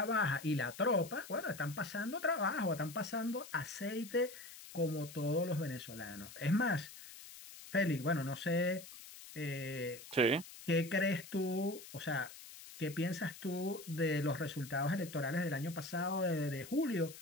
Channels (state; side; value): noise; left; hiss, 15 dB below the sound